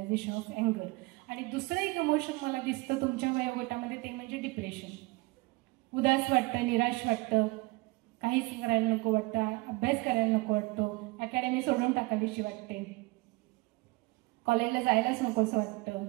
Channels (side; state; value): left; quieter; 23.7 dB